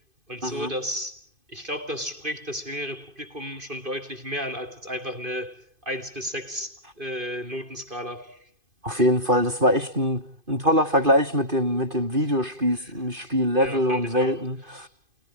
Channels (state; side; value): late; left; 2.5 ms